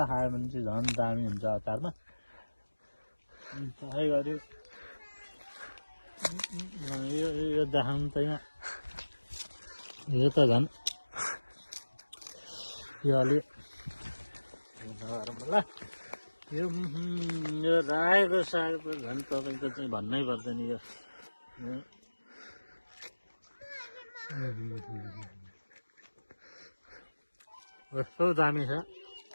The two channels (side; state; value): both; inverted; correlation -1.00